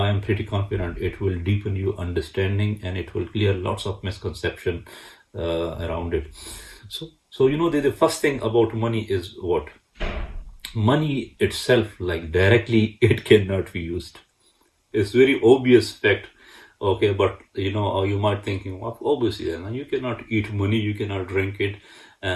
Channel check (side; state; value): both; identical; correlation 1.00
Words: am pretty confident it will deepen your understanding, and it will clear lots of misconception around it. So the first thing about money is what? Money itself, like, directly, it cannot be used. It's very obvious fact. Okay, but you might thinking, well, obviously, you cannot eat money, you cannot drink it,